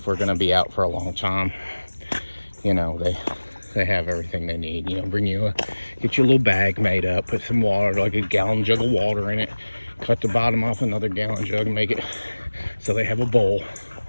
we're gonna be out for a long time, you know, they have everything they need. You know, get you a little bag made up, put some water, like a gallon jug of water in it, cut the bottom off another gallon jug and make it so they have a bowl.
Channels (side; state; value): both; inverted; correlation -1.00